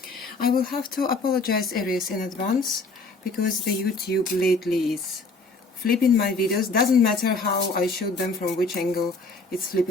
I will have to apologize Aries in advance because the YouTube lately is flipping my videos. Doesn't matter how I shoot them, from which angle, it's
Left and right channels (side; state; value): right; quieter; 3.6 dB